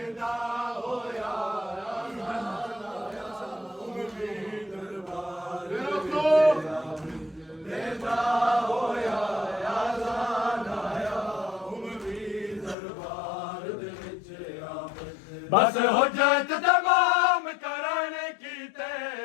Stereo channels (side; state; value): right; drops out; at 12.8 s